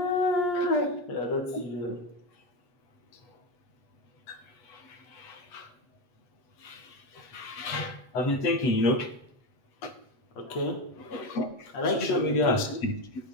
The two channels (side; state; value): right; late; 8.2 ms